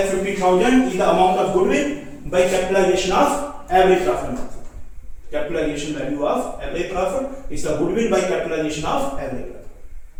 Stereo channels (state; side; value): identical; both; correlation 1.00